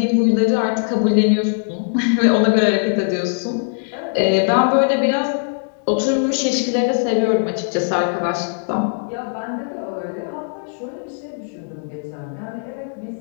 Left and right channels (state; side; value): silent; right; digital silence